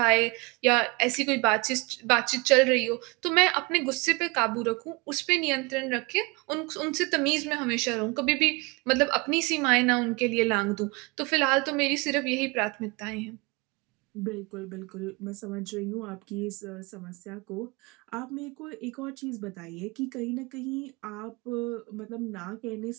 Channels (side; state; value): left; quieter; 26.9 dB